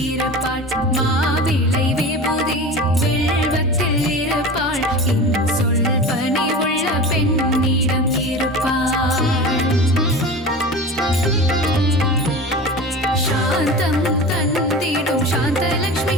இருப்பாள் மாவிளை விபூதி வில்வத்தில் இருப்பாள் சொல் பணிவுள்ள பெண்ணிடம் இருப்பாள் சாந்தம் தந்திடும்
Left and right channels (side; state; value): both; normal; correlation 0.32